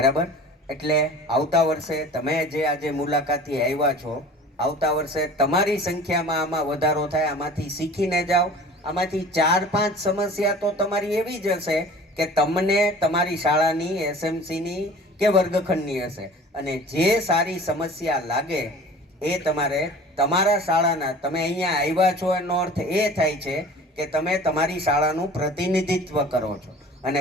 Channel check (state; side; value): normal; both; correlation 0.43